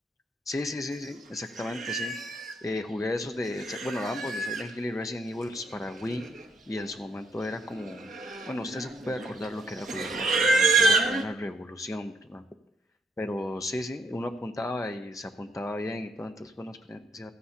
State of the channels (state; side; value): normal; both; correlation 0.72